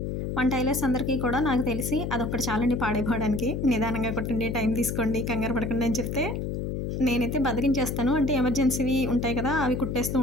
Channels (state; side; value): noise; left; hum, 3 dB below the sound